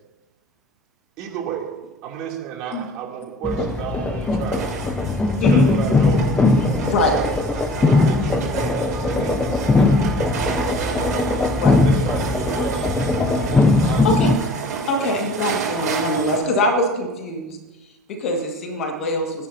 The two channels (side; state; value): both; normal; correlation 0.49